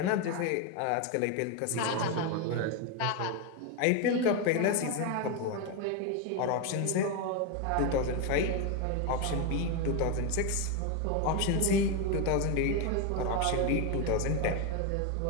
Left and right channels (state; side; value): different; both; correlation 0.02